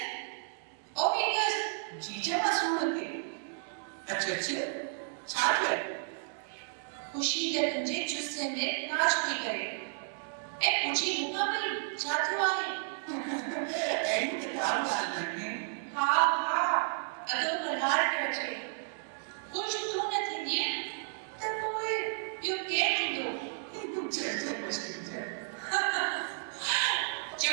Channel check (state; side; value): silent; left; 56 dB below the other